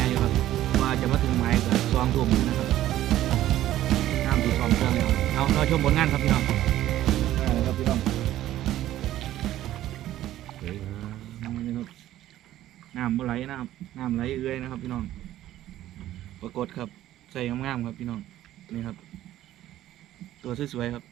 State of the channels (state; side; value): quieter; left; 13.6 dB